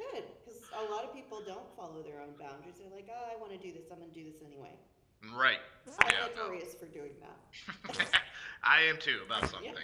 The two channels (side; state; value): both; identical; correlation 1.00